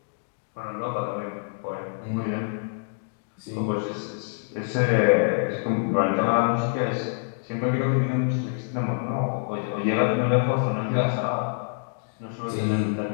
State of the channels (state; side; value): silent; right; digital silence